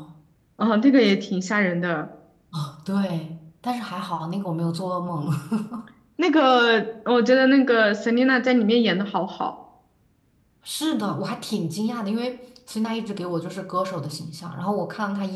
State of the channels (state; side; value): identical; both; correlation 1.00